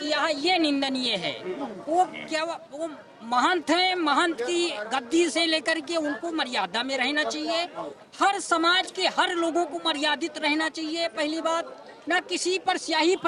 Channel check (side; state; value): both; identical; correlation 1.00